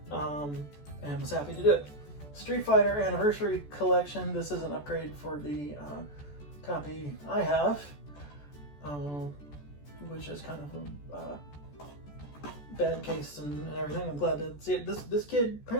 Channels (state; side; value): late; right; 14 ms